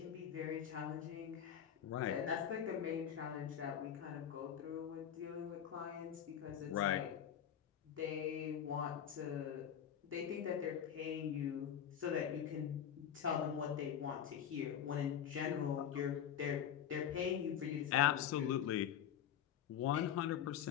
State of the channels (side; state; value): right; quieter; 9.3 dB